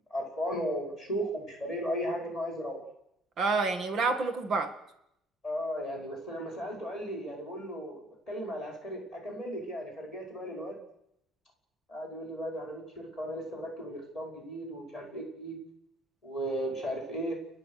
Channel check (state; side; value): normal; both; correlation 0.58